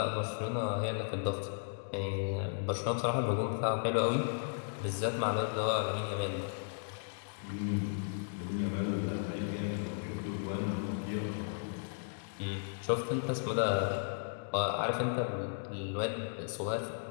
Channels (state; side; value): silent; right; digital silence